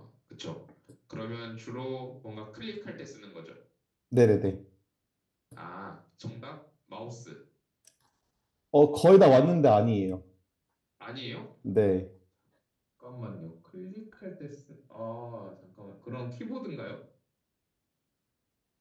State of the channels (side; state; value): both; identical; correlation 1.00